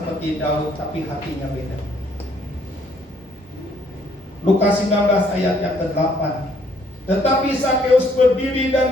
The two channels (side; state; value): both; normal; correlation 0.66